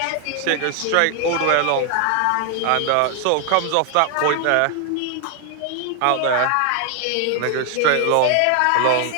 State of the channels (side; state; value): both; different; correlation 0.00